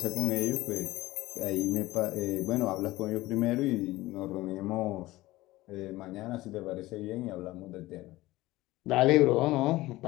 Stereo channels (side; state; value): right; quieter; 18.2 dB